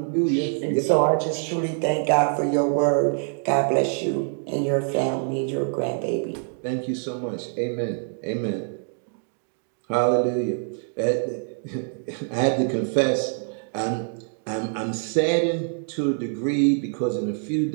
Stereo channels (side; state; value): left; silent; 62 dB below the other